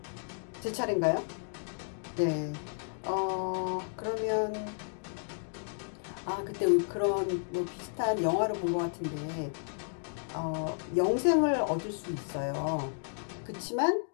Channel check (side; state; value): right; silent; digital silence